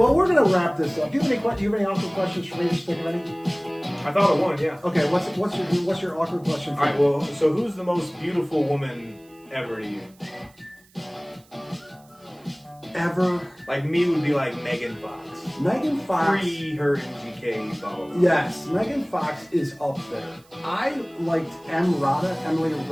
we're gonna wrap this up. Do you have any awkward questions for me to stick ready? I thought of one, yeah. Okay, what's your awkward question? All right, well, so who's the most beautiful woman ever to you? Ever? Like me would be like Megan Fox. Megan Fox. Pre her MGK, blah, blah, blah. Yes, Megan Fox is up there. I liked Emily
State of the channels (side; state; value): right; noise; hiss, 30 dB below the sound